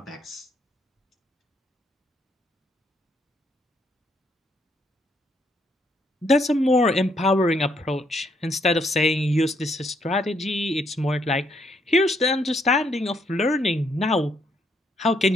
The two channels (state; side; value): normal; both; correlation 0.73